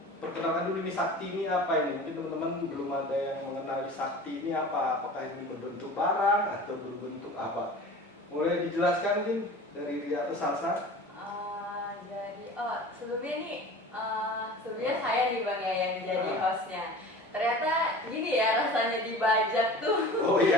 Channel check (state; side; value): normal; both; correlation 0.39